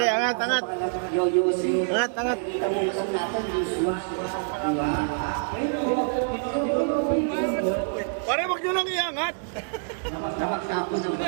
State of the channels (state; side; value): silent; left; digital silence